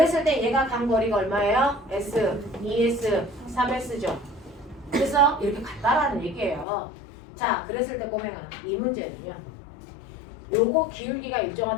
때 얘가 간 거리가 얼마예요? s, 2s, 3s죠. 그래서 이렇게 같다라는 얘기예요. 자, 그랬을 때 꼬맹아 이 문제는요. 요거 기울기가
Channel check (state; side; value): drops out; right; at 6.7 s